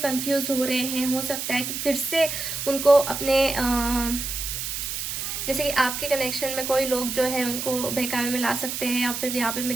कंफ्यूज हो रहे हैं। हो सकता है कि फिर से उनको अपने जैसे कि आपके कनेक्शन में कोई लोग जो है उनको बहकावे में ला सकते हैं, या फिर यहाँ पे मैं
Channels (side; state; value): right; noise; hiss, 4 dB below the sound